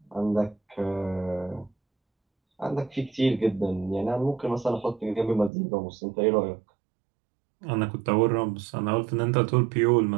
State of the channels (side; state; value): left; drops out; at 5.5 s